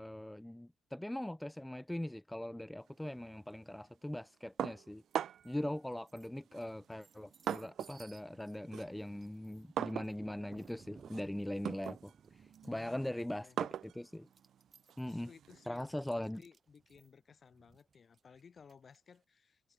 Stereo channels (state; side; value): normal; both; correlation 0.90